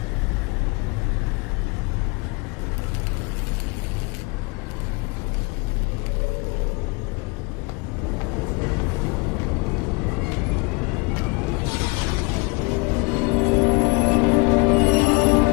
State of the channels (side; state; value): right; quieter; 27.9 dB